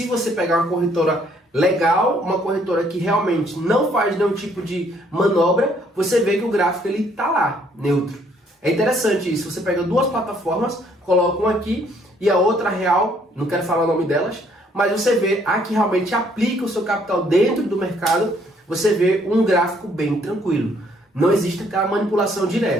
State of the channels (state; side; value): normal; both; correlation 0.65